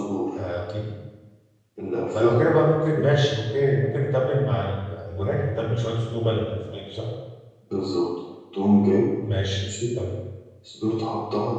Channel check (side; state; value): both; identical; correlation 1.00